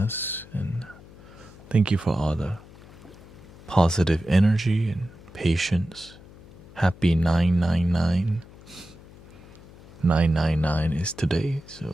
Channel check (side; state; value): left; noise; hum, 21 dB below the sound